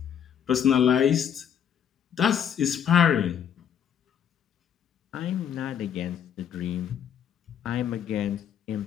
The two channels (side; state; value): right; quieter; 8.8 dB